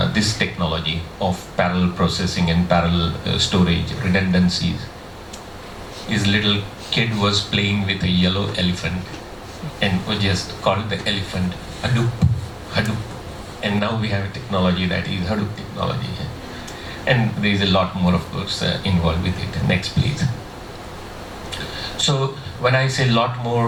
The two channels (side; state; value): both; identical; correlation 1.00